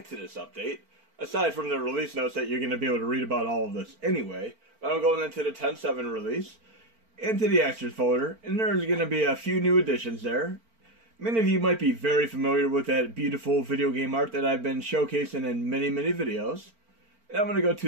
this update, aside from the release notes that you're going to be able to read about all of this anyway. But I'm going into the 10.7 release, into the extras folder, and there's going to be a few new additions there. Many of you might be very familiar with that beautiful video game art that I've been showcasing in many videos. And I'm going to go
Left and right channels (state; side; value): late; left; 4.4 ms